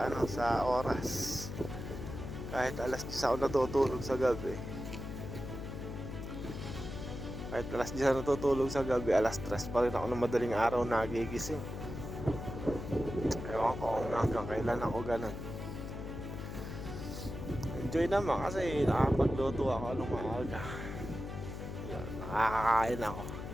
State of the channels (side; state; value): left; noise; hum, 7 dB below the sound